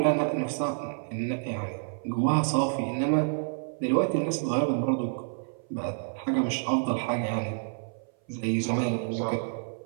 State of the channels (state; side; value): silent; left; 57 dB below the other